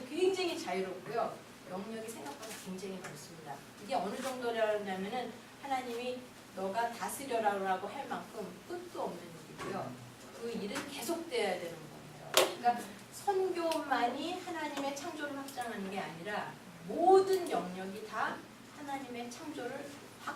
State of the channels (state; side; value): identical; both; correlation 1.00